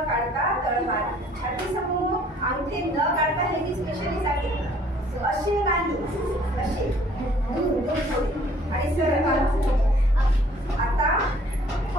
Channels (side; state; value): both; normal; correlation 0.57